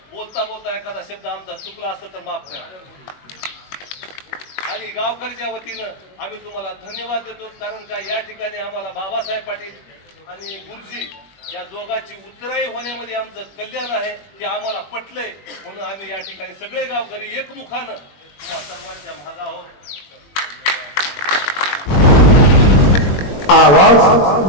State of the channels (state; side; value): late; right; 21 ms